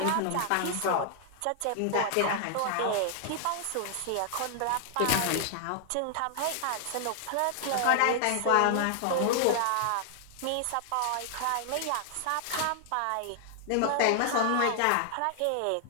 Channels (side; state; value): both; different; correlation -0.01